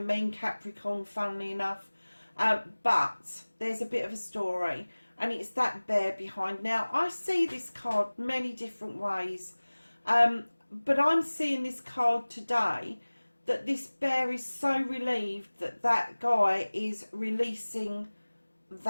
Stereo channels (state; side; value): inverted; both; correlation -1.00